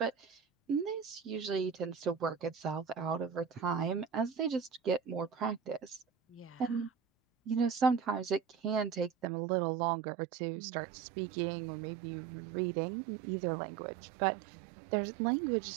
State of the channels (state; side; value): drops out; left; at 9.2 s